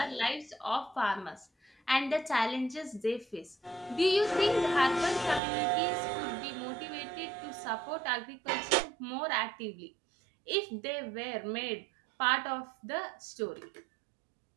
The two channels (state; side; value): drops out; left; at 5.4 s